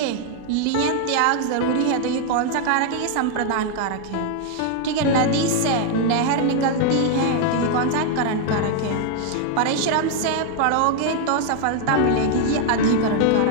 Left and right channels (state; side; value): different; both; correlation 0.00